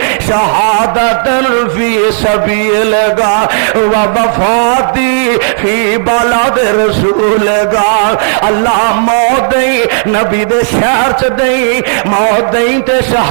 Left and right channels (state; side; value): silent; left; 63 dB below the other